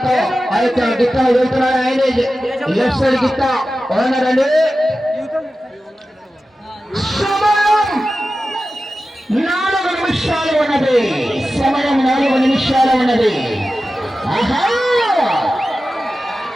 ఆ యొక్క గిత్త వెళ్తున్నాడు. ఆయనే లెఫ్ట్ సైడ్ గిత్త ఓనరండి. 4 నిమిషాల నిమిషాలు ఉన్నది. సమయం 4 నిమిషాలు ఉన్నది. ఆహా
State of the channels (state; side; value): normal; both; correlation 0.94